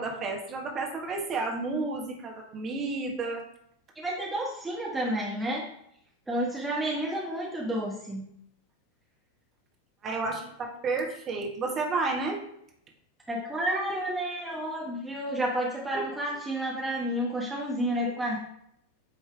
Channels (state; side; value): normal; both; correlation 0.41